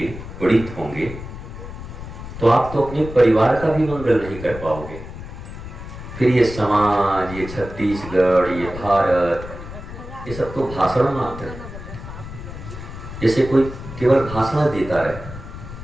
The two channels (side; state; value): left; noise; rumble, 11 dB below the sound